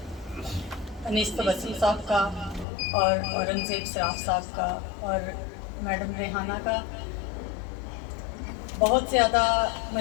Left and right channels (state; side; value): drops out; right; at 2.7 s